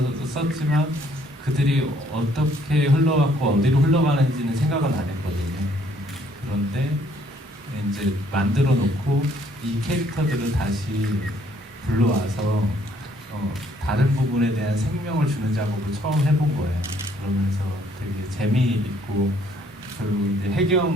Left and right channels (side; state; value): both; normal; correlation 0.64